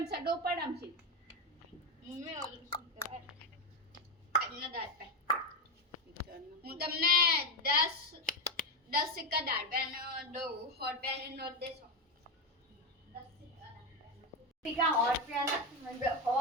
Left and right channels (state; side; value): normal; both; correlation 0.10